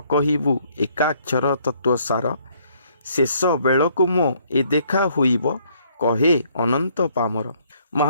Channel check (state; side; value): inverted; both; correlation -0.65